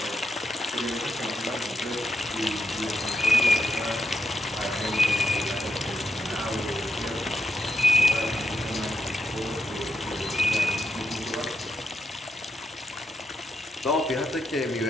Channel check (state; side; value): normal; both; correlation 0.83